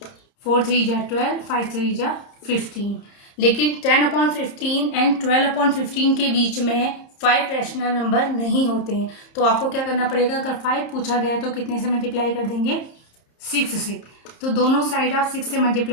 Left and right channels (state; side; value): late; right; 30 ms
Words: 4 3 जा 12, 5 3 जा 15। लेकिन 10/15 एंड 12/15 के बीच में 5 रैशनल नंबर नहीं होते हैं। तो आपको क्या करना पड़ेगा, अगर 5 पूछा गया है तो कितने से मल्टीप्लाई कर देंगे, 6 से। तो दोनों साइड आप 6 से